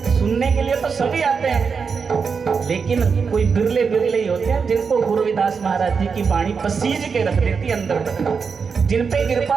सुनने के लिए तो सभी आते हैं, लेकिन कोई बिरले बिरले ही होते हैं जिनको गुरुदास महाराज जी की वाणी पसीज के रख देती अंदर, जिन पे कृपा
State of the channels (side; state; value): left; quieter; 5.6 dB